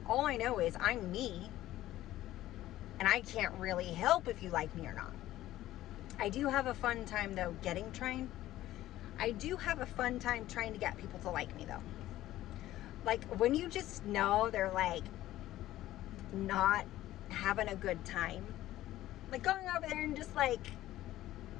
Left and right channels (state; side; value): quieter; right; 14.7 dB